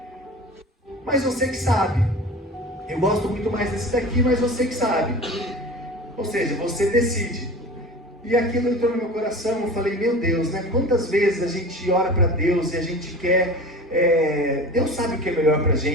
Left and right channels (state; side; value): normal; both; correlation 0.36